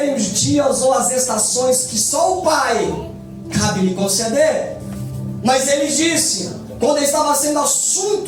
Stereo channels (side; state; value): both; identical; correlation 1.00